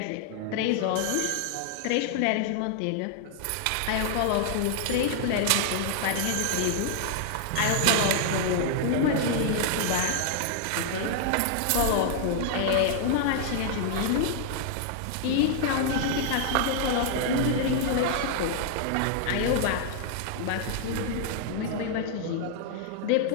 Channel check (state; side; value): different; both; correlation 0.00